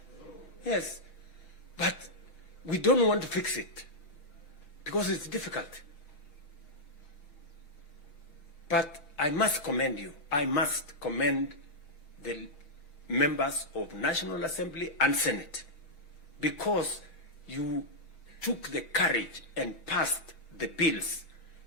Yes. But we don't want to fix it because it's difficult. But I must commend you. I must commend the members of National Assembly and Senate, because you took the courage and passed the bills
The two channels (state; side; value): late; right; 5.9 ms